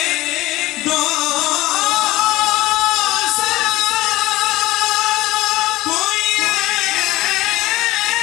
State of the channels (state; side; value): quieter; right; 17.8 dB